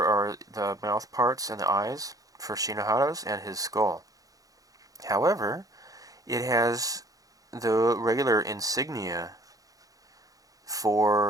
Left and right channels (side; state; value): left; late; 0.17 ms